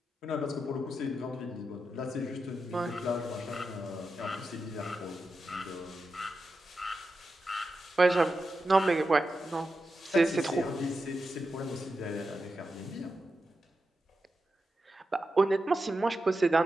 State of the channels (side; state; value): both; normal; correlation 0.89